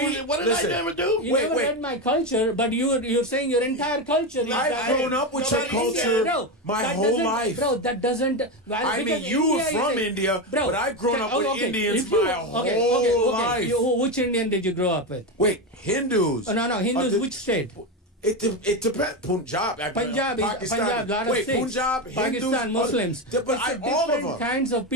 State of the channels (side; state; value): both; normal; correlation 0.14